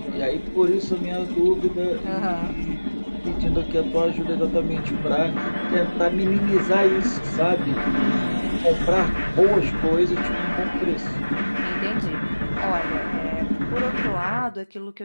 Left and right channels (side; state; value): both; inverted; correlation -1.00